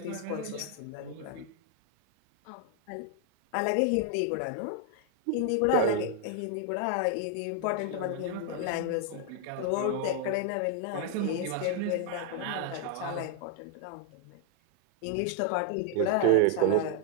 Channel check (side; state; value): both; different; correlation 0.00